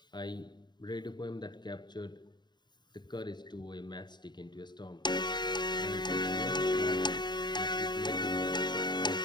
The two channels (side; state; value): right; late; 0.21 ms